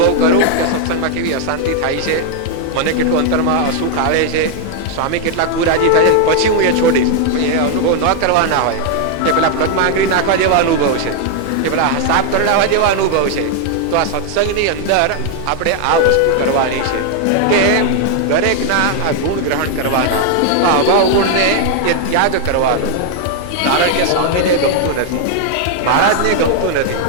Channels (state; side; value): different; both; correlation 0.00